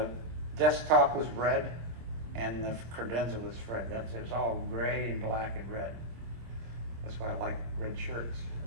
desktop was red, and the credenza was red. It was all gray and black and red. That's why I like red shirts.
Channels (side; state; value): left; late; 25 ms